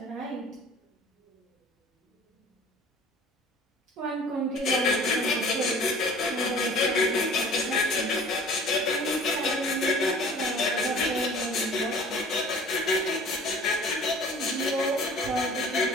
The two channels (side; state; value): both; normal; correlation 0.48